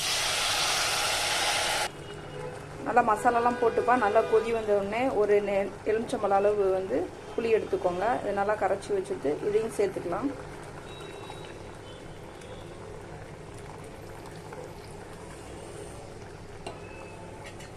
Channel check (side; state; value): both; identical; correlation 1.00